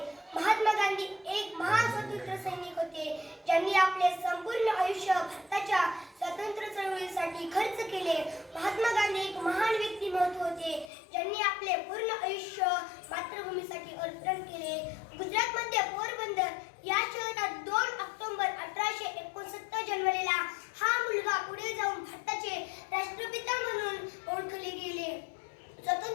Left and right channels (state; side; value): drops out; right; at 10.9 s